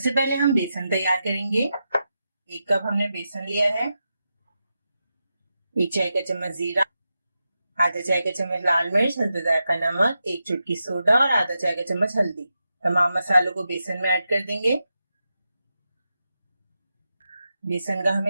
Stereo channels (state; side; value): inverted; both; correlation -0.88